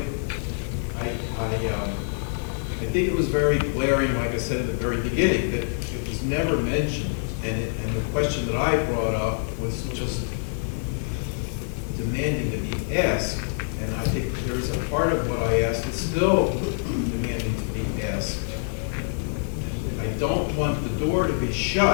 I think it was very glaring, like I said at the very beginning, that it was never mentioned. And the question that I brought up was just demanding to be asked, and I think there's a part of what I asked that's still demanding to be asked. I don't want the door to be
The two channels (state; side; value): silent; right; digital silence